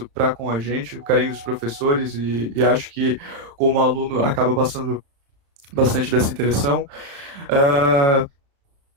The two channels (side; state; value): left; late; 36 ms